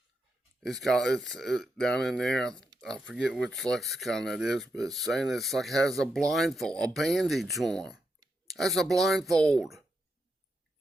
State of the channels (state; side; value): normal; both; correlation 0.85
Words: It's down in there, I forget which lexicon that is, but it's saying it's like it has a blindfold, a bandage on. That's a blindfold.